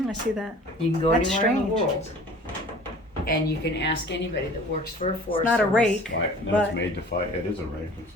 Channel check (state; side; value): normal; both; correlation 0.46